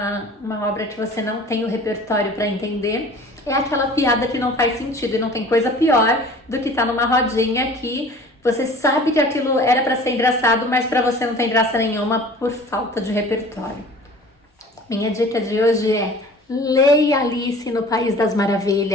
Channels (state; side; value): normal; both; correlation 0.45